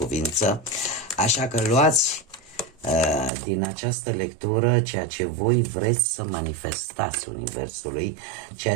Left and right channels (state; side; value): drops out; left; at 3.3 s